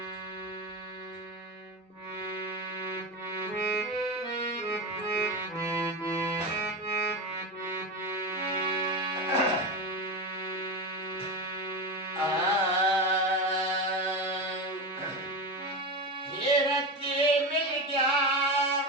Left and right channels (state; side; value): normal; both; correlation 0.20